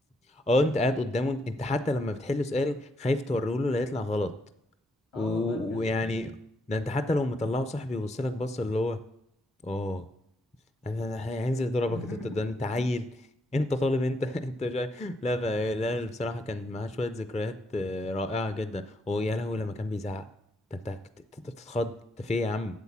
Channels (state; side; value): normal; both; correlation 0.77